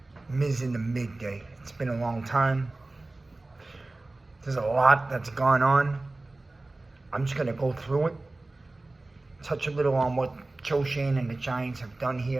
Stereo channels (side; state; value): left; quieter; 3.0 dB